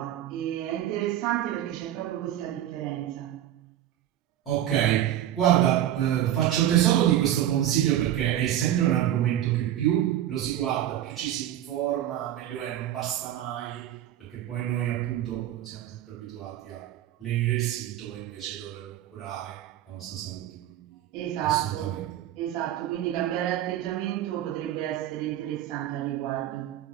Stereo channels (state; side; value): quieter; left; 12.1 dB